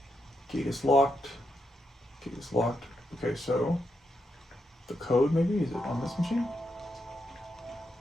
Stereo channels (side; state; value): both; normal; correlation 0.82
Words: Gate is locked. Gate is locked. Okay, so the code maybe? Is it on this machine?